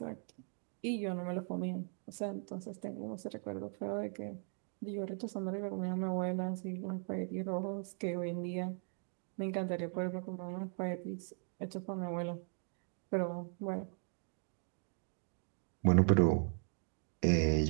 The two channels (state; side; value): silent; left; 52 dB below the other